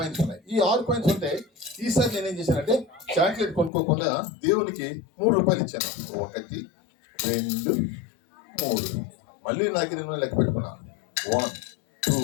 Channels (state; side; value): drops out; right; at 3.7 s